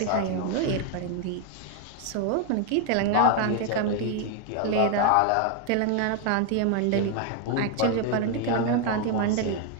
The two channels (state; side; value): different; both; correlation 0.01